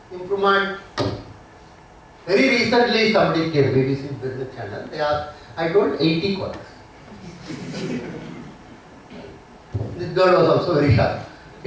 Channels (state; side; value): identical; both; correlation 1.00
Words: improvement. Very recently somebody came, BBC Business Channel, they asked, I told 80 quarters. This girl was also very sharp.